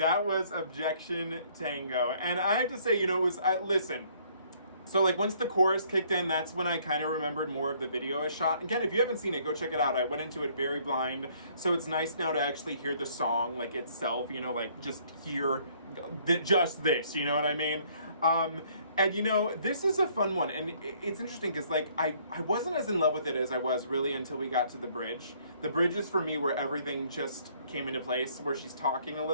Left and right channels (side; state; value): both; inverted; correlation -0.62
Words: was Objection, Tango. And I have to say, you know, it was, listen. So like once the chorus kicked in, that's when I kind of remembered more of the video I shot. Again, if you haven't seen it, go check it out. I went into it very blind. So it's nice now to actually hear the song like itself, you know, like just hear just this, you know what I mean? And you know, this is a fun one, and it's interesting because like I wasn't as in love with it as I was really until we got to the bridge. The bridge is for me where everything just came into place, where she's talking a